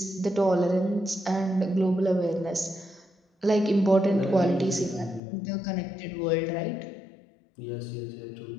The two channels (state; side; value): drops out; right; at 5.2 s